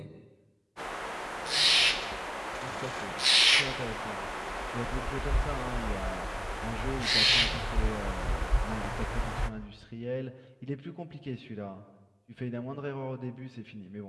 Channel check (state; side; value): identical; both; correlation 1.00